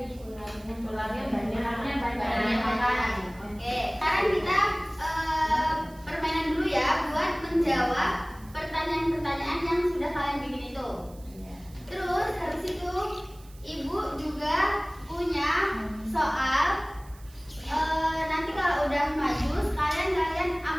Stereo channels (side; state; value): right; noise; hiss, 25 dB below the sound